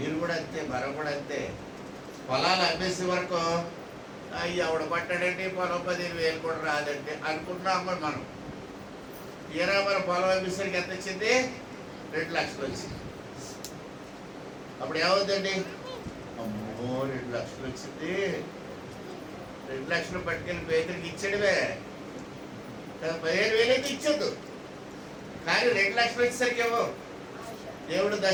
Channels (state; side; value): identical; both; correlation 1.00